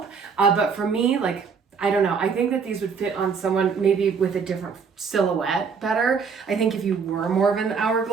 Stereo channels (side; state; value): left; quieter; 5.8 dB